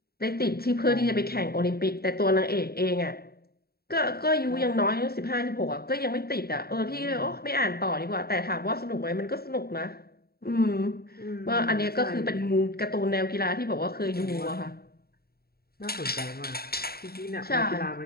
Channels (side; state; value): right; late; 0.45 ms